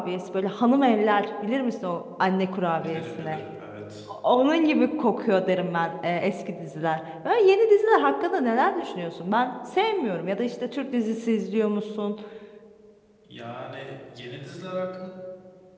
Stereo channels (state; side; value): identical; both; correlation 1.00